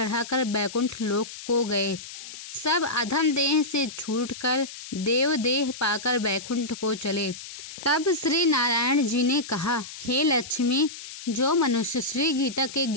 बैकुंठ लोक को गए। सब अधम देह से छूटकर देव देह पाकर बैकुंठ को चले। तब श्री नारायण जी ने कहा, हे लक्ष्मी, जो मनुष्य श्री गीता के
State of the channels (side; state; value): left; noise; hiss, 13 dB below the sound